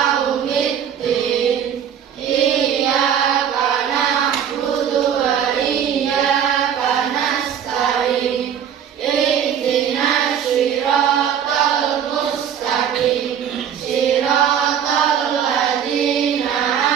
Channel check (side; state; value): left; quieter; 8.7 dB